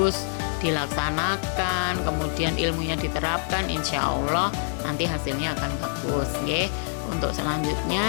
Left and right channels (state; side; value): silent; right; 61 dB below the other